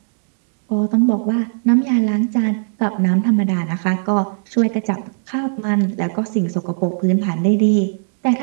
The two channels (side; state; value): left; silent; digital silence